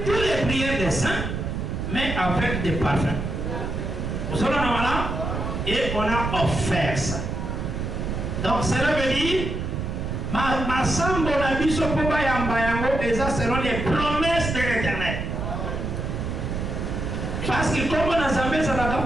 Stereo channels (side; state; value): right; noise; rumble, 3 dB below the sound